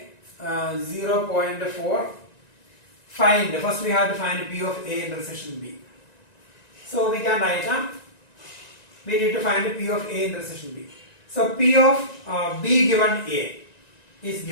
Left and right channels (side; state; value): right; late; 1.9 ms